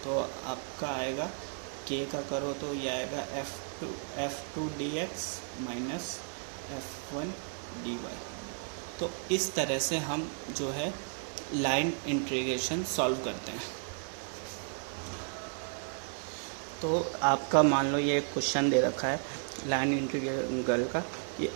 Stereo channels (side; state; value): left; silent; 55 dB below the other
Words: तो आपका आएगा k का करो तो ये आएगा f2 dx minus f1 dy। तो इस तरह से हम जो है लाइन इंटीग्रेशन सॉल्व करते हैं। तो आपका मान लो ये क्वेश्चन दे रखा है लाइन इंटीग्रल का, ये